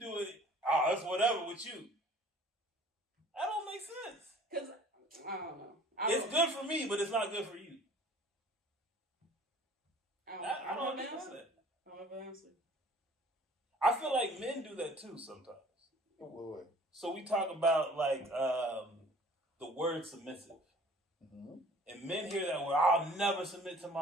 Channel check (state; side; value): normal; both; correlation 0.51